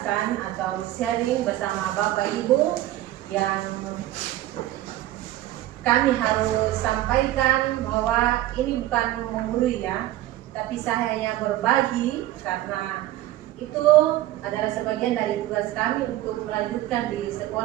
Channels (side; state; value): left; quieter; 14.9 dB